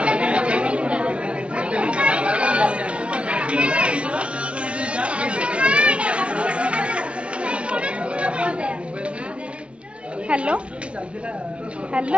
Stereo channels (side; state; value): left; late; 0.060 ms